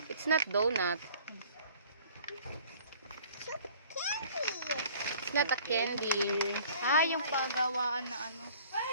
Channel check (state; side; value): inverted; both; correlation -0.51